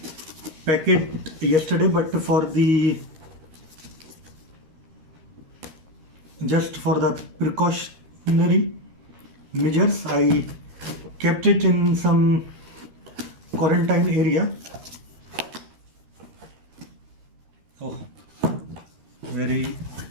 packet yesterday, but for the just for the precautionary measures I kept it in some quarantine area. Oh, very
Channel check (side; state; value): left; late; 13 ms